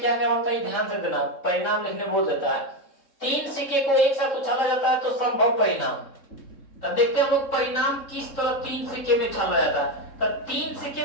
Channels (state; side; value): late; right; 3.7 ms